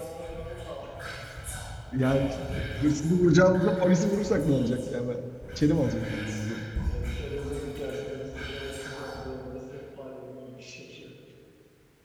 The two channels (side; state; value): both; identical; correlation 1.00